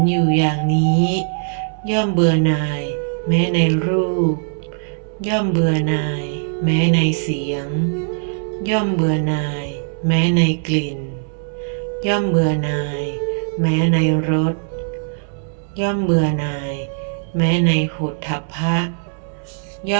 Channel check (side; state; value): left; silent; 66 dB below the other